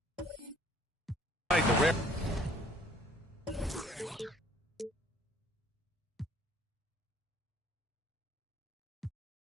tonight, the rare.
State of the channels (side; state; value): both; normal; correlation 0.57